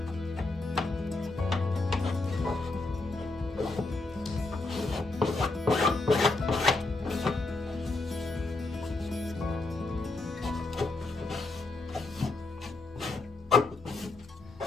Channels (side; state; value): right; quieter; 3.3 dB